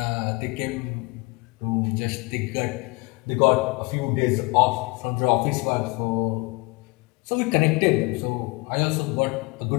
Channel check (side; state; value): right; quieter; 26.5 dB